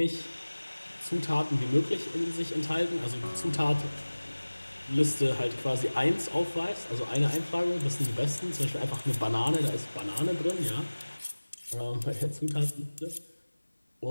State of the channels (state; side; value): inverted; both; correlation -1.00